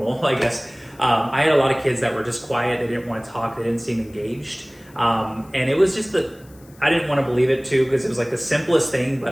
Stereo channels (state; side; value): noise; left; hiss, 27 dB below the sound